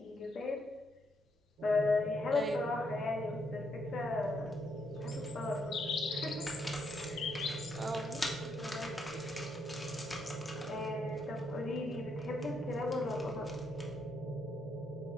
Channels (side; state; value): both; normal; correlation 0.76